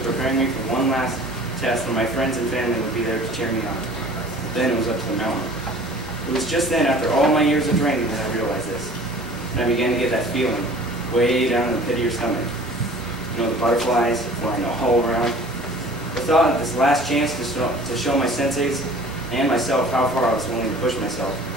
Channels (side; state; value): both; normal; correlation 0.46